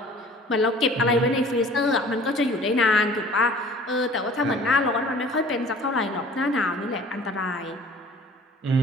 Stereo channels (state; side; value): normal; both; correlation 0.49